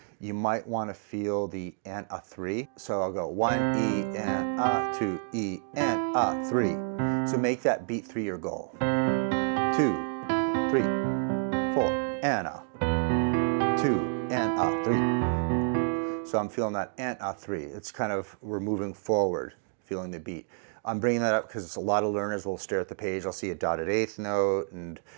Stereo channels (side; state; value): left; silent; 59 dB below the other